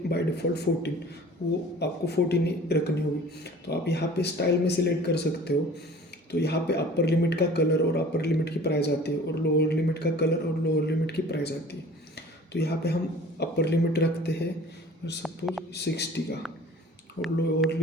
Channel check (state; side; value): normal; both; correlation 0.45